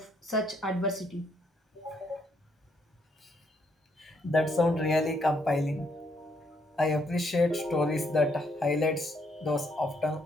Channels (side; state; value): both; normal; correlation 0.72